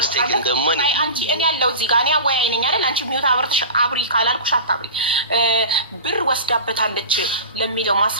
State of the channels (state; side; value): inverted; both; correlation -0.33